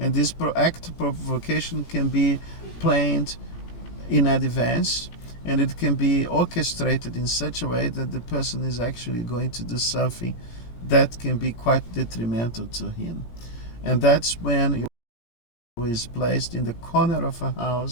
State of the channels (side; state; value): right; late; 17 ms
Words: this act of provocation can be planned in advance, and it can be orchestrated in such a way that the person is actually going to do something that can be quite detrimental to him. And that's when he is placed in the corner of a